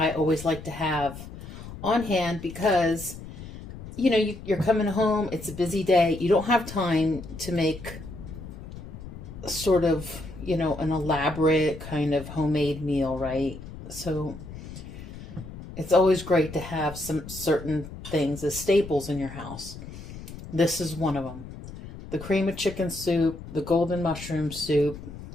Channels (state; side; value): noise; left; rumble, 13 dB below the sound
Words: always like to have on hand because, you know, you're coming home. It's a busy day. You don't have time to make sort of, you know, an elaborate kind of homemade meal, right? So it's always great to have some certain things as staples in your house. This is one of them. The cream of chicken soup, the golden mushroom soup.